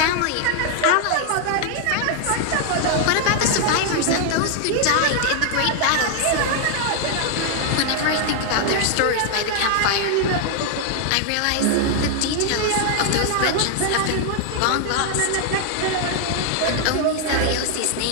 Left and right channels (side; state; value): both; different; correlation 0.00